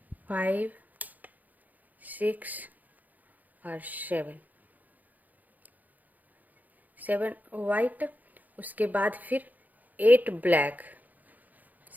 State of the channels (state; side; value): late; left; 0.081 ms